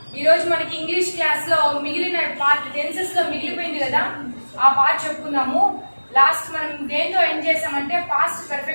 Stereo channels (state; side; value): inverted; both; correlation -1.00